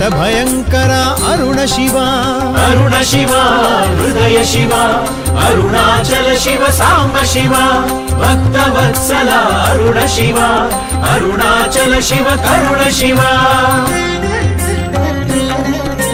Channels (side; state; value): both; identical; correlation 1.00